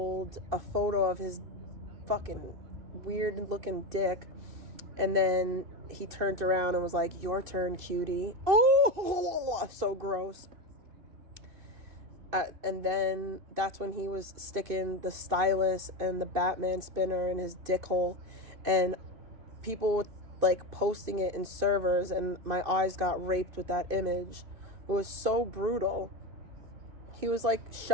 a photo of his fucking weird looking dick, and then he turned around and was like, "Your turn, cutie." Oh, so gross. And then that's when he was sticking the stylus and the Batman spinner in his dick hole. And people like posting it in servers, and my eyes got raped with that image. It was so brutal. He was like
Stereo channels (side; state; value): left; late; 2.7 ms